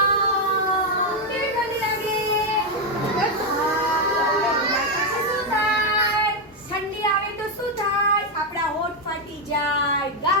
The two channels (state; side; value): normal; both; correlation 0.03